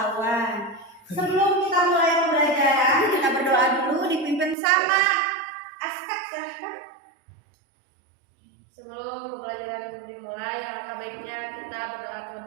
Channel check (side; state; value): left; drops out; at 4.5 s